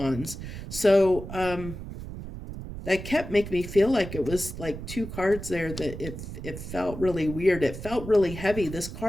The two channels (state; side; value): noise; right; rumble, 10 dB below the sound